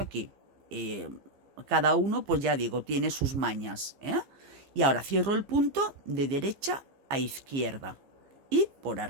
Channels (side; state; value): left; late; 15 ms